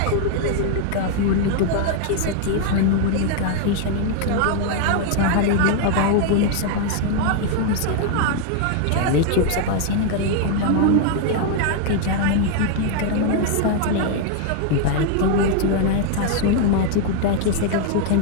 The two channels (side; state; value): both; different; correlation 0.00